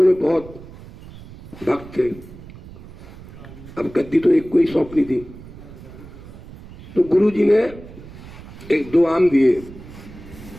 बहुत भक्त थे। अब गद्दी तो एक को ही सौंपनी थी। तो गुरु जी ने एक दो आम दिए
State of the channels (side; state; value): right; noise; rumble, 17 dB below the sound